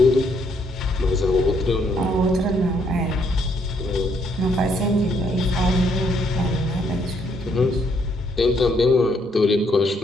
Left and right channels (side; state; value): both; normal; correlation 0.71